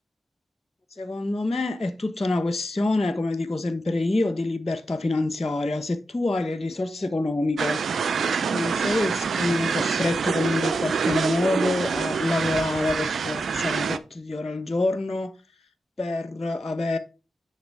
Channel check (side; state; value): both; normal; correlation 0.87